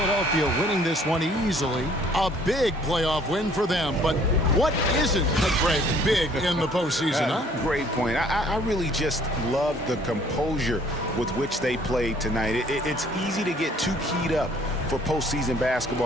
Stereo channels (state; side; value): normal; both; correlation 0.58